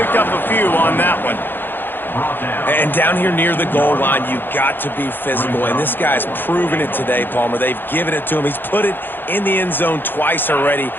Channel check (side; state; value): right; late; 0.097 ms